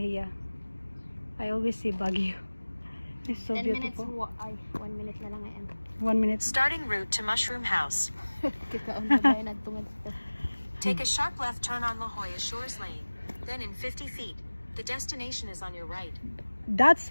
I always see Baguio. It's so 10 beautiful. minutes, 1 minute na lang ngayon. 1 minute. Starting route to Mushroom House. Take a sharp left turn on La Jolla Shores Lane. Then in 50 feet, the destination is on your right. That's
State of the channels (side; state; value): both; inverted; correlation -1.00